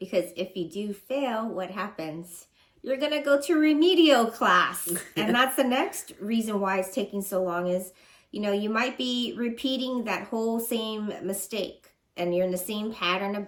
if you do fail, what happens? You're going to go to remedial class. And that's the next reason why it's taking so long is, you might be repeating that whole same mistake and you're in the same pattern of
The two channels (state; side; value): identical; both; correlation 1.00